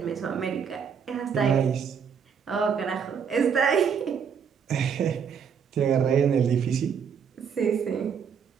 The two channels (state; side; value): quieter; left; 7.0 dB